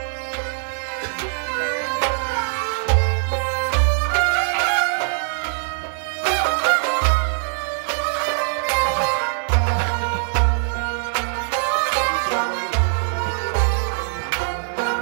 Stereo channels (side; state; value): left; silent; digital silence